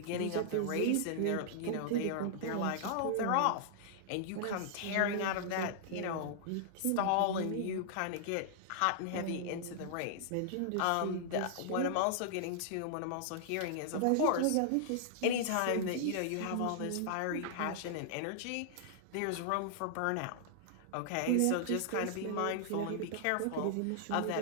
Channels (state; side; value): different; both; correlation -0.01